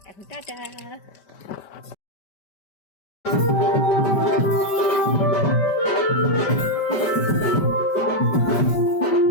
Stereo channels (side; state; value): right; late; 5.1 ms